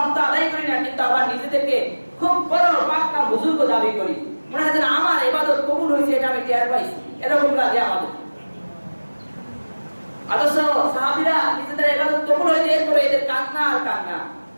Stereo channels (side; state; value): both; inverted; correlation -1.00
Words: তো আদায় করি না, কিন্তু আবার নিজেদেরকে খুব বড় পাক্কা বুজুর্গ দাবি করি। মনে হয় যেন আমার ইবাদত কবুল হয়েছে, এটা আমি টের পাইছি, এরকম লাগে আমাদের। অথচ সাহাবীরা নিজেদের ইবাদত কবুল হয়েছে, এরপরে এদের কান্না আর কান্না।